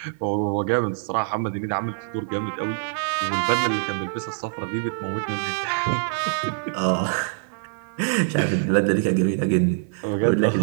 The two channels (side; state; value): left; silent; digital silence